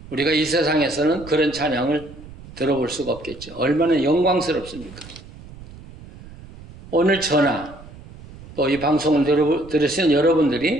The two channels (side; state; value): right; noise; rumble, 18 dB below the sound